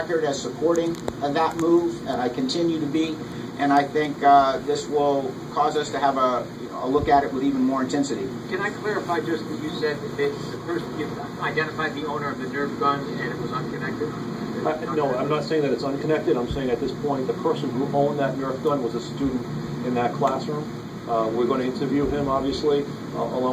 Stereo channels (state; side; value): identical; both; correlation 1.00